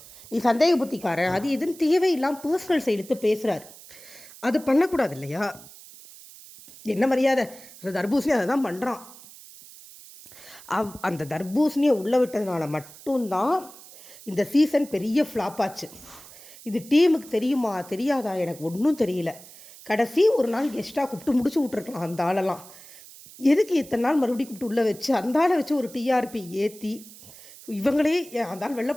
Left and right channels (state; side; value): noise; right; hiss, 19 dB below the sound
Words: நீ சந்தேக புத்திக்காரன், அது எதுன்னு தேவையில்லாமல் பர்சனல் சைடுத்து பேசுகிறாரு. அது பண்ணக்கூடாது இல்லையா? என்ன மரியாதை? அந்த தர்பூசணி அதை தான் பண்ணுறான். அந்த தர்பூசணியை உள்ளே விட்டதுனால மட்டும்தான் இந்த சீசன் பெரிய ஃப்ளாப் ஆச்சு. இது டீமுக்கு தெரியுமா தெரியாதா எனக்கு ஒன்றும் தெரியல. கடைசி ஒரு நாள் கெஸ்ட்டாக கூப்பிட்டு முடிச்சு விட்ருக்கலாம் அந்த ஆளெல்லாம். எதுக்கு இத்தனை நாள் மறுபடியும் கூப்பிட்டு உள்ளே வச்சு அந்த ஆளை வச்சு ஒரு டிஆர்பி ஏற்றி இவங்களே அந்த ஆள் வெளில